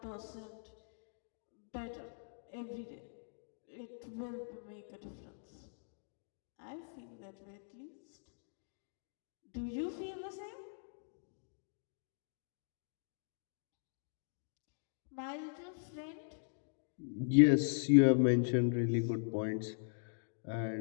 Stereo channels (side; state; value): right; silent; digital silence